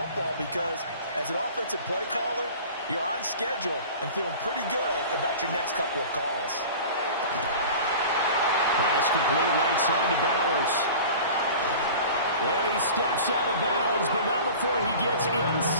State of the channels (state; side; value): inverted; both; correlation -0.39